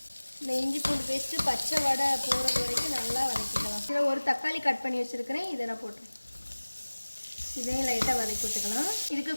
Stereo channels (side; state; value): both; inverted; correlation -1.00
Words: இந்த இஞ்சி பூண்டு பேஸ்ட்டு பச்சை வடை போகிறது வரைக்கும் நல்லா வதக்கிக்கலாம். இதில் ஒரு தக்காளி கட் பண்ணி வச்சுருக்கிறேன், இதை நான் போட்டுருக்கேன். இதையும் லைட்டாக வதக்கி விட்டுக்கலாம். இதுக்கு